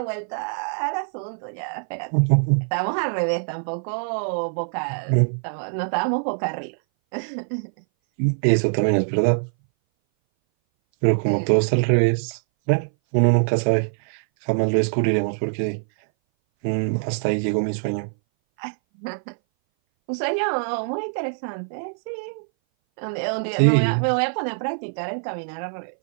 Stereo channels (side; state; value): left; silent; 59 dB below the other